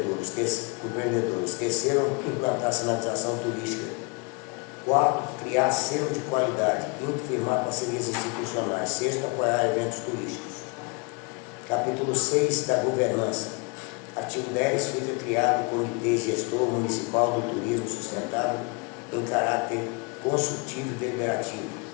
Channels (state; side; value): quieter; right; 30.6 dB